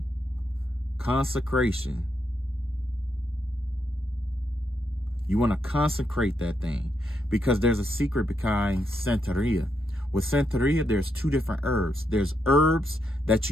consecration. You want to consecrate that thing because there's a secret behind Santeria. With Santeria, there's 2 different herbs. There's herbs that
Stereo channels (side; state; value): both; normal; correlation 0.80